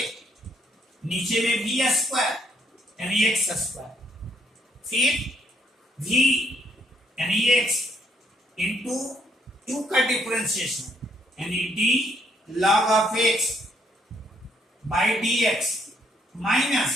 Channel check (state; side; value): normal; both; correlation 0.70